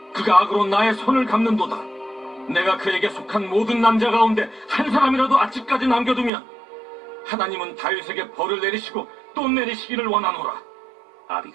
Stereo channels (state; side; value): drops out; left; at 6.3 s